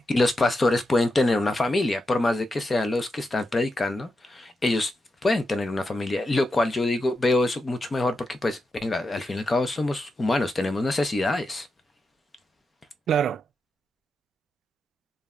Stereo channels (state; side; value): normal; both; correlation 0.87